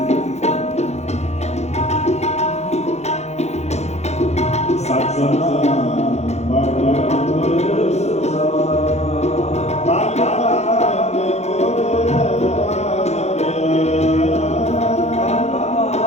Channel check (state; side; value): late; right; 0.32 ms